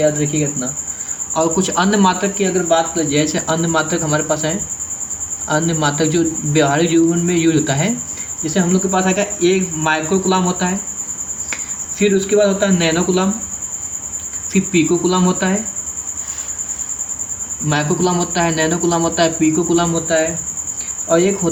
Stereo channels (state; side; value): identical; both; correlation 1.00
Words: रखिएगा इतना। और कुछ अन्य मात्रक की अगर बात करें, जैसे अन्य मात्रक हमारे पास है, अन्य मात्रक जो व्यवहारिक जीवन में यूज होता है, जैसे हम लोग के पास आएगा 1 माइक्रो कूलाम होता है, फिर उसके बाद होता है नैनो कूलाम, फिर पीको कूलाम होता है, माइक्रो कूलाम होता है, नैनो कूलाम होता है, पीको कूलाम होता है, और एक